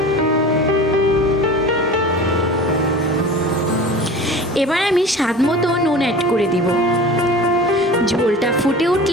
এবার আমি স্বাদ মতো নুন অ্যাড করে দিব। ঝোলটা ফুটে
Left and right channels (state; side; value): normal; both; correlation 0.38